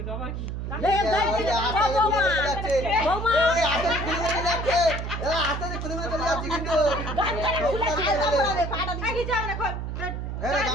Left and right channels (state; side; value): noise; right; hum, 5 dB below the sound